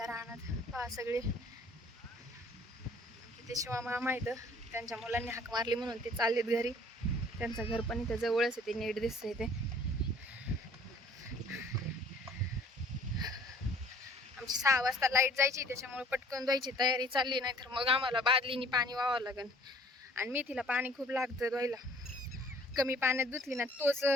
रानात. पहा सगळे किती शिवा मामा इथं, त्यांच्या मुलांनी हाक मारली म्हणून ते चाललेत घरी. त्यांचं घर पण इथं जवळच आहे, ते नीट दिसतंय ते. आमची 6 वाजता लाईट जायची, त्याच्यामुळे पटकन धुवायची तयारी चालली, नाही तर मग आम्हाला बादलीनी पाणी वाहावं लागेल. आणि मेथीला पाणी खूप लागतं धुवायला. कमी पाण्यात धुतली ना, तोच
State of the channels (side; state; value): both; normal; correlation 0.55